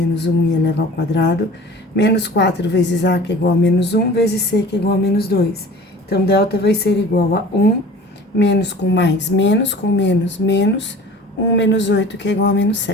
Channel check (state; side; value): normal; both; correlation 0.43